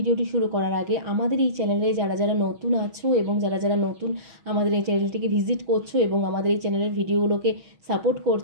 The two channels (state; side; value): late; left; 6.3 ms